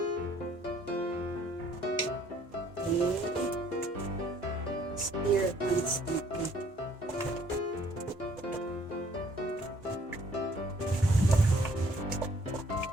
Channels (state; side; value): normal; both; correlation 0.61